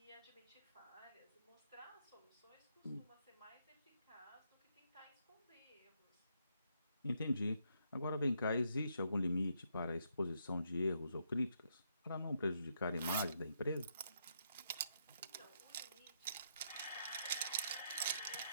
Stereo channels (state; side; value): inverted; both; correlation -0.76